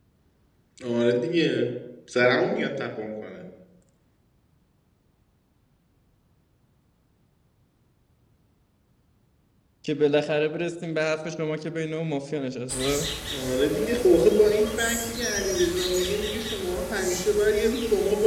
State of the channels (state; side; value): identical; both; correlation 1.00